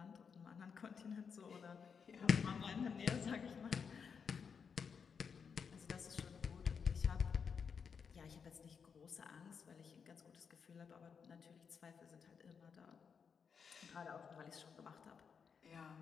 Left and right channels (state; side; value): quieter; right; 6.3 dB